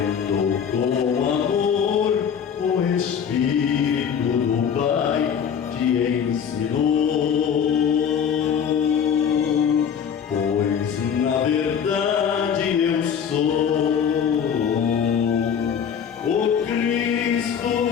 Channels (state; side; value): quieter; right; 7.7 dB